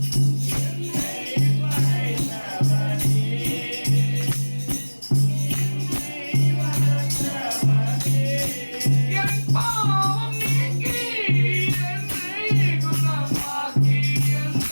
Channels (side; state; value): both; inverted; correlation -1.00